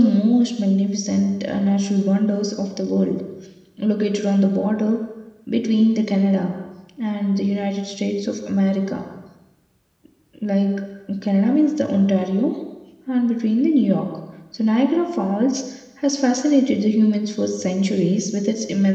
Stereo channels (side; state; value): both; identical; correlation 1.00